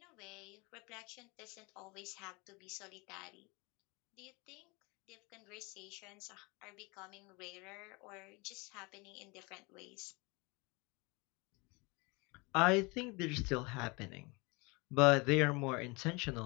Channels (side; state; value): right; quieter; 27.3 dB